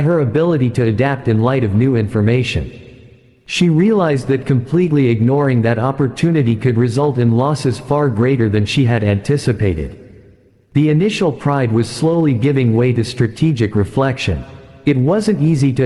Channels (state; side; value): identical; both; correlation 1.00